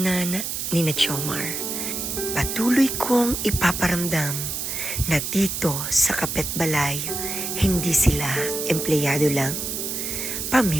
ni na Jomar. Patuloy kong ipaparamdam na dito sa Kapitbalay, hindi sila empleyado lang.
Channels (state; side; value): noise; right; hiss, 3 dB below the sound